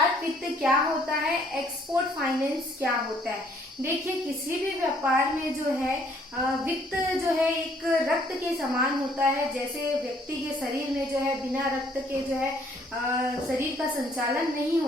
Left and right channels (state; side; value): normal; both; correlation 0.63